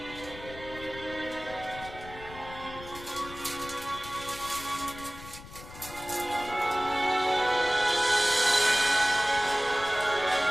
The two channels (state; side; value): noise; left; rumble, 15 dB below the sound